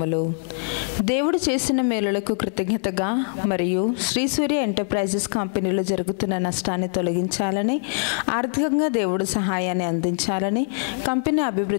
దేవుడు చేసిన మేలులకు కృతజ్ఞతగా మరియు శ్రీ సూర్య ఎంటర్ప్రైజెస్ కంపెనీలో జరుగుతున్న నష్టాన్ని తొలగించాలని, ఆర్థికంగా దేవుడు సహాయాన్ని అందించాలని, కంపెనీ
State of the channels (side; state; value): right; silent; digital silence